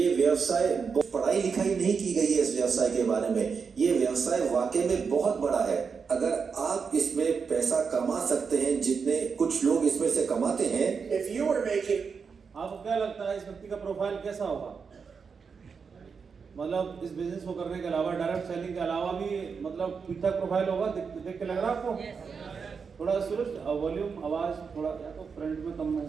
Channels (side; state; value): left; quieter; 5.7 dB